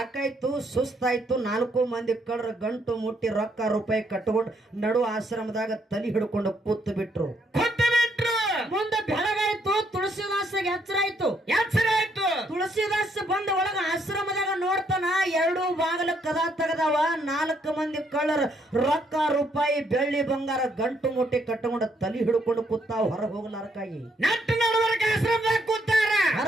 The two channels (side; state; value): both; normal; correlation 0.72